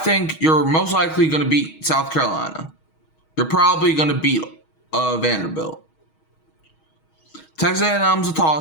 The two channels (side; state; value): right; late; 6.3 ms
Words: you're most likely going to beat South Carolina. You're probably going to beat Vanderbilt. Texas A&M's a